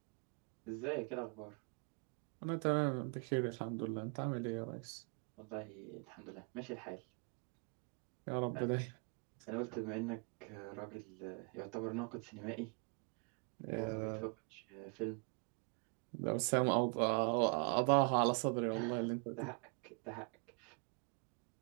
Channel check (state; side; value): quieter; left; 35.7 dB